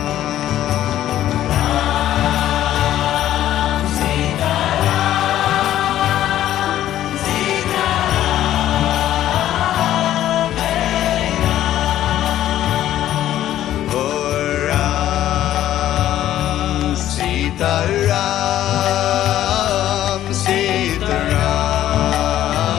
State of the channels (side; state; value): right; quieter; 12.5 dB